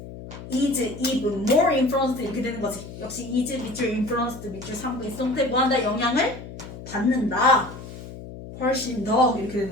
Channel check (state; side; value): noise; left; hum, 13 dB below the sound